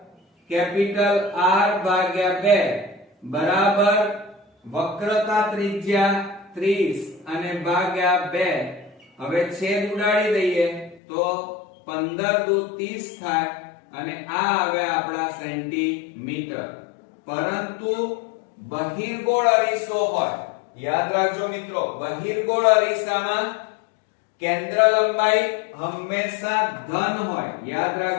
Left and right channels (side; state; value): right; drops out; at 11.0 s